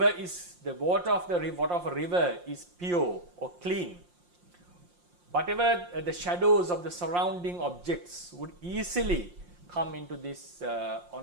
water of a river is pure or clean. Whatever the shadows of the surrounding objects would easily come into this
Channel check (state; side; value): late; left; 5.7 ms